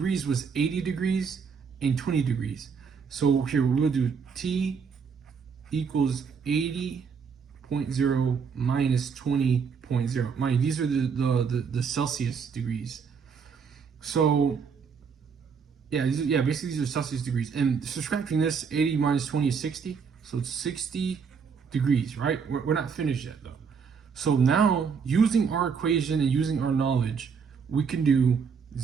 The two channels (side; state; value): left; quieter; 6.0 dB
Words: was 80 degrees and 20 degrees. So here we'll do T equals 80.0 minus 20.0. Mind, these are the Celsius degrees. So yeah, basically these are Celsius degrees. And subtracting this, 80 minus 20 is 60. So it's 60 degrees, right? We're not finished yet though. So now, using our equation and using our knowledge, we can do